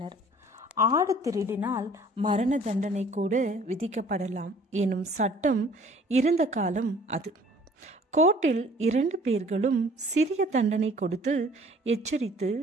ஆடு திருடினால் மரண தண்டனை கூட விதிக்கப்படலாம் எனும் சட்டம் இருந்த காலம் அது. கோர்ட்டில் 2 பேர்களும் சிறிய தண்டனை கொடுத்து எச்சரித்து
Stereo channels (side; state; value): both; normal; correlation 0.53